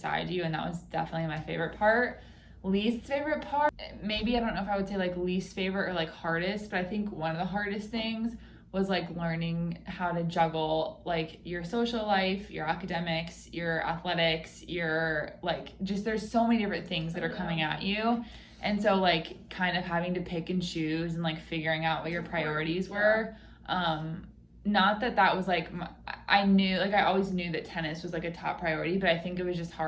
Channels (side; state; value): both; identical; correlation 1.00